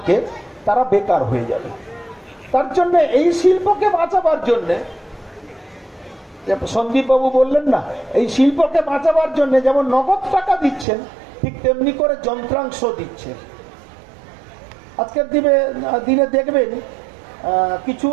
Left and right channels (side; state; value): left; drops out; at 10.9 s